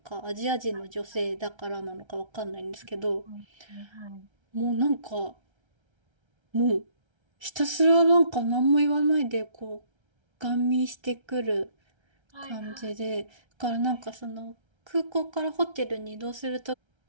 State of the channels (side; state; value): left; late; 1.3 ms